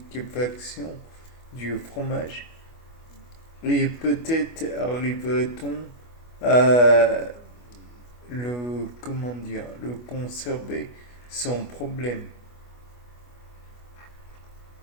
du fromage, et peut-être arriverait-on à le conserver sans problème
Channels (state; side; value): late; right; 25 ms